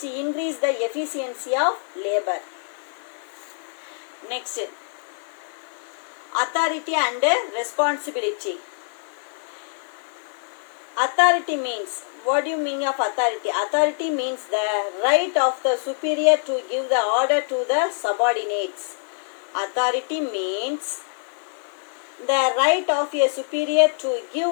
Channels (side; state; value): right; silent; digital silence